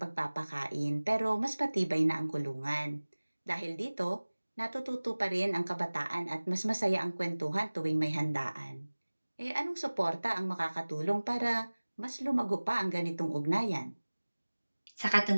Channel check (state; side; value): inverted; both; correlation -1.00